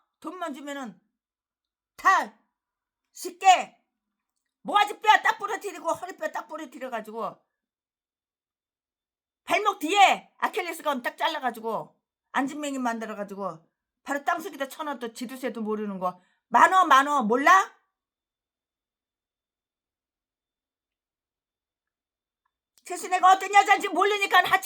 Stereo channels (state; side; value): identical; both; correlation 1.00